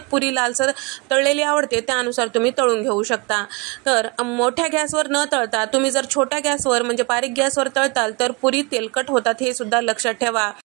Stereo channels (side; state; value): left; quieter; 28.7 dB